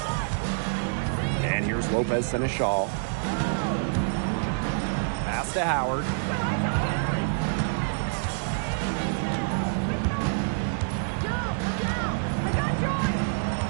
And here's Lopez Seneschal. Pass to Howard.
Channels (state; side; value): silent; left; digital silence